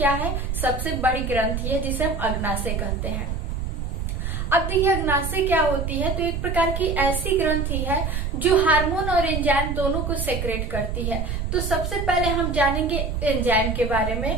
है? सबसे बड़ी ग्रंथि है, जिसे हम अग्नाशय कहते हैं। अब देखिए अग्नाशय क्या होती है? तो एक प्रकार की ऐसी ग्रंथि है जो हार्मोन और एंजाइम दोनों को सेक्रेट करती है। तो सबसे पहले हम जानेंगे एंजाइम के बारे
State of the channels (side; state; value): right; noise; rumble, 3 dB below the sound